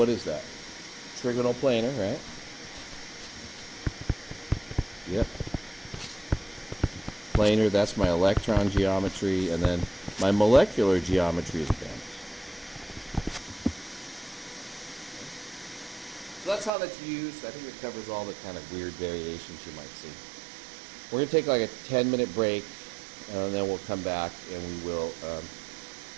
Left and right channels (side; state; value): left; drops out; at 16.7 s